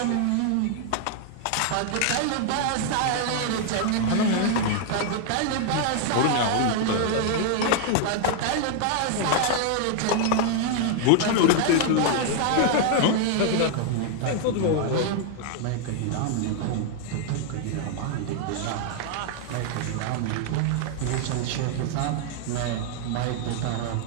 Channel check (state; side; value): different; both; correlation 0.00